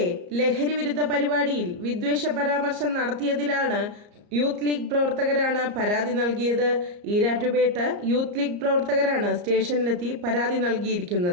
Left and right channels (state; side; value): late; left; 34 ms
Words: ലഹരി വിരുദ്ധ പരിപാടിയിൽ വിദ്വേഷ പരാമർശം നടത്തിയതിലാണ് യൂത്ത് ലീഗ് പ്രവർത്തകരാണ് പരാതി നൽകിയത്. ഈരാറ്റുപേട്ട യൂത്ത് ലീഗ് പ്രവർത്തകരാണ് സ്റ്റേഷനിലെത്തി പരാതി